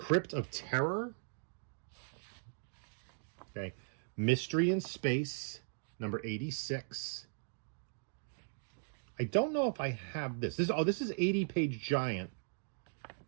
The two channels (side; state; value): left; silent; digital silence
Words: of Terror. Okay. Mystery in Space, number 86. I don't know if I have this. This is 80-page giant,